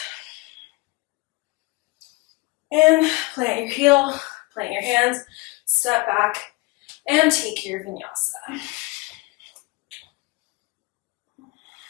And plant your heel, plant your hands, step back, and take your vinyasa.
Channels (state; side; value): quieter; right; 24.7 dB